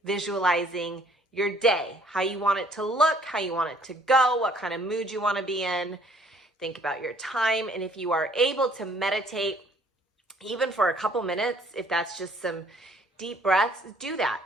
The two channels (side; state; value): both; normal; correlation 0.60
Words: visualizing your day, how you want it to look, how you want it to go, what kind of mood you want to be in. Think about your time. And if you are able to meditate, even for a couple minutes, if that's just some deep breaths, do that.